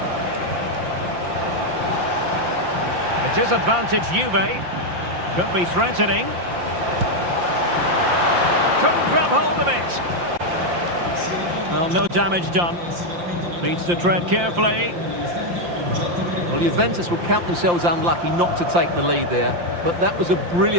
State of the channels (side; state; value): left; late; 5.8 ms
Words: It is advantage Juve. Could be threatening. Couldn't grab hold of it. Well, no damage done. Needs to tread carefully. Well, Juventus will count themselves unlucky not to take the lead there, but that was a